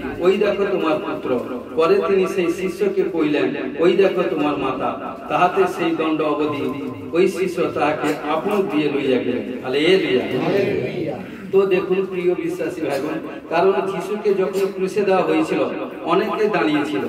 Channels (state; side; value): identical; both; correlation 1.00